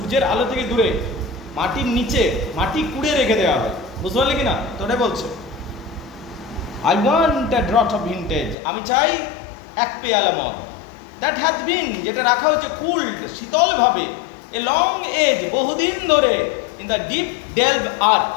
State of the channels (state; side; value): drops out; right; at 8.6 s